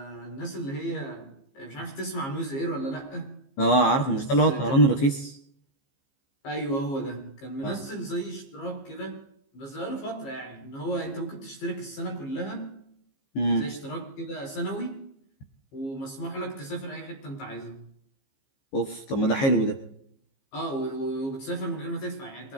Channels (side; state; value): right; late; 15 ms